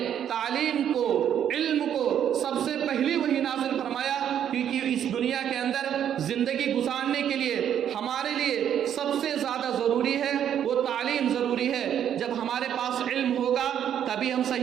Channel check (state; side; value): quieter; left; 9.6 dB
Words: تعلیم کو، علم کو سب سے پہلی وحی نازل فرمایا؟ کیونکہ اس دنیا کے اندر زندگی گزارنے کے لیے ہمارے لیے سب سے زیادہ ضروری ہے وہ تعلیم ضروری ہے۔ جب ہمارے پاس علم ہوگا تبھی ہم